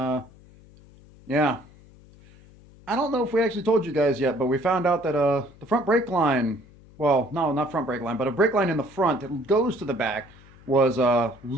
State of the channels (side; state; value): left; noise; hum, 24 dB below the sound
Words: yeah. I don't know if we actually told you guys yet, but we found out that the front brake line, well, no, not front brake line, but a brake line in the front that goes to the back was